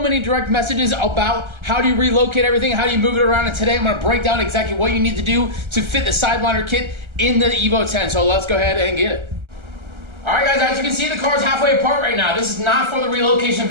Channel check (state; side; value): late; left; 1.3 ms